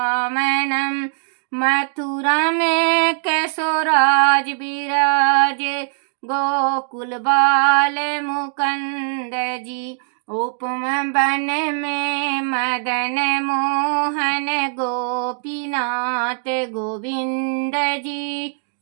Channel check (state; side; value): silent; left; digital silence